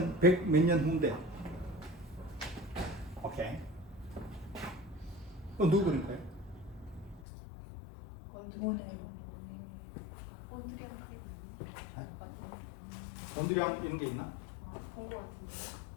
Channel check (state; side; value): drops out; right; at 7.2 s